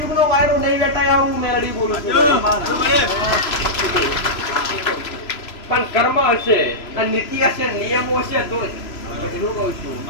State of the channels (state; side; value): late; right; 3.0 ms